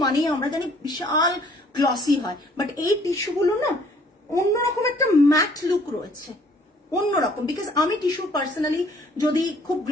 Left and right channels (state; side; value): normal; both; correlation 0.59